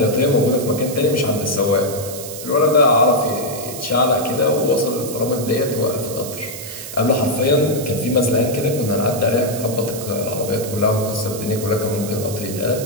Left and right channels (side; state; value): right; noise; hiss, 10 dB below the sound